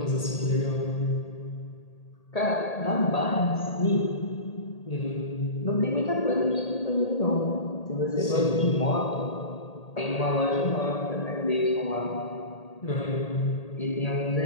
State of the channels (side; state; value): right; late; 1.8 ms